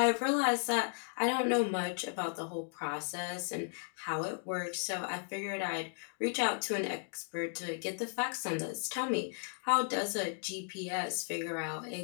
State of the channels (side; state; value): right; silent; 54 dB below the other